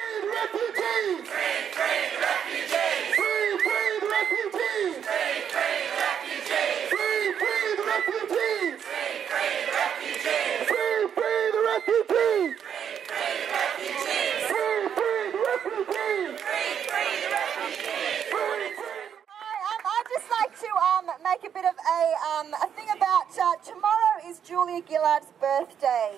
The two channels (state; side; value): quieter; left; 8.4 dB